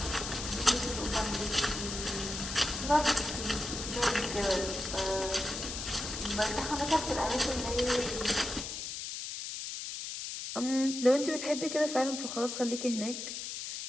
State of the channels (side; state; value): left; noise; hiss, 6 dB below the sound